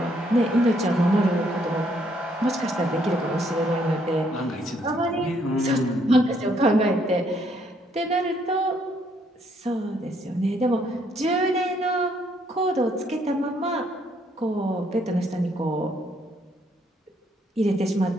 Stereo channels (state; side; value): normal; both; correlation 0.69